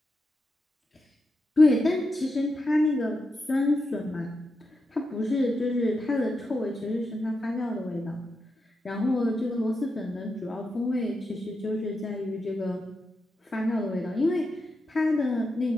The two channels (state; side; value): normal; both; correlation 0.86